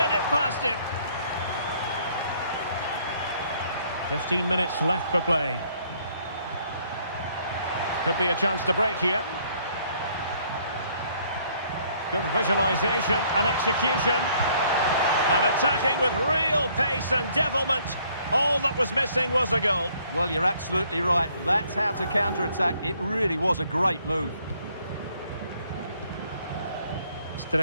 it past him. 15 minutes left for play. Could be a chance to break here. Good visualization and execution. And attacking with real pace and devilment. All that was missing was a goal. Well, you're absolutely right. That's how to counter-attack. It really was a great move.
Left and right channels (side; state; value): both; inverted; correlation -0.64